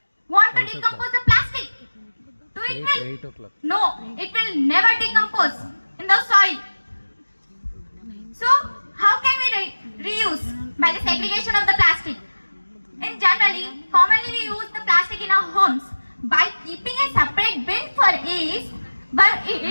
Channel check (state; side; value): inverted; both; correlation -1.00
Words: want to decompose the plastic, do it will? 8 o'clock. No, it will never decompose in the soil. So, how can we reuse? By the segregation of the plastic. In generally, commonly we use the plastic in our homes by keeping a separate bin for each, but